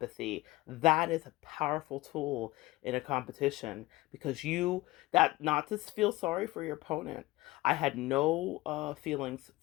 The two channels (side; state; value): right; quieter; 19.5 dB